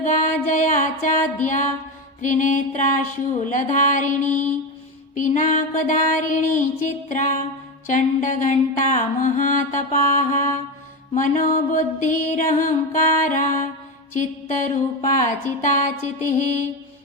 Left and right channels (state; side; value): normal; both; correlation 0.17